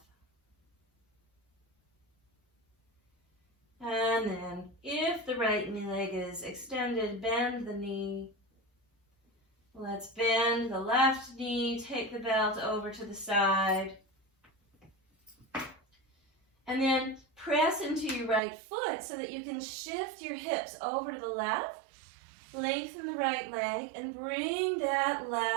And then, if the right knee leg is extended, bend the knee. Let's bend the left knee, take the belt over to the side. And then press into your right foot so that you can shift your hips over to the left. Lengthen the right leg and bring that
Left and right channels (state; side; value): drops out; left; at 18.4 s